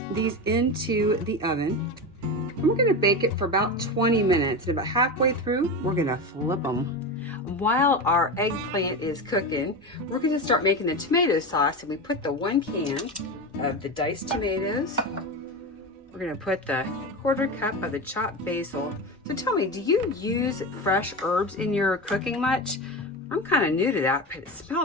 these into the oven. And we're gonna bake it for about 20 minutes. And about halfway through, we're gonna flip them. While our eggplant is cooking, we're gonna start making the tomato sauce, and we put the 1 can of the diced tomatoes. We're gonna put the 1/4 cup of the chopped basil. So tell me, do you use fresh herbs in your cooking much? I'm kind of new to that, but it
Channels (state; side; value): normal; both; correlation 0.22